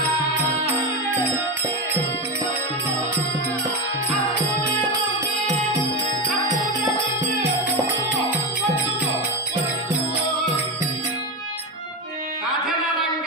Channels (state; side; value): normal; both; correlation 0.16